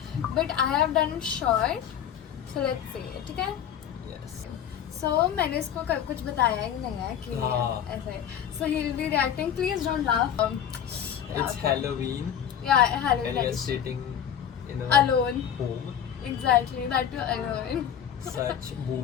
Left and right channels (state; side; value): quieter; right; 9.2 dB